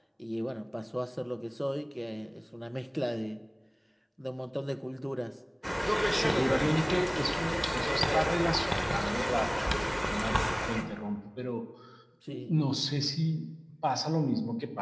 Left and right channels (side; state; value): both; identical; correlation 1.00